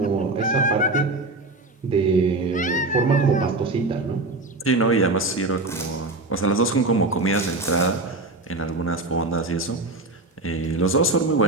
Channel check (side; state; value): left; quieter; 3.1 dB